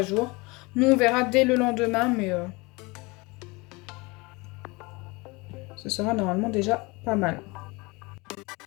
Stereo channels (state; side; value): quieter; right; 25.3 dB